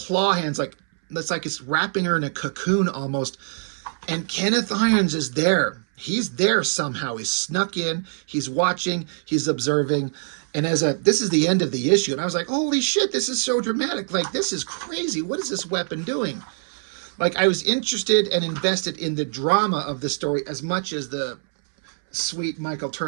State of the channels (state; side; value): silent; left; 63 dB below the other